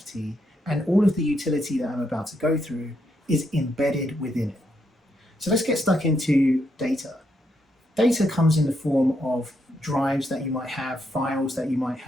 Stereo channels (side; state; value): both; normal; correlation 0.79